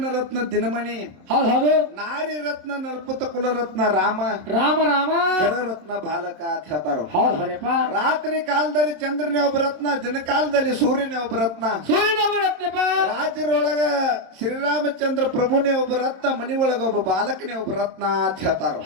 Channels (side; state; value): left; late; 27 ms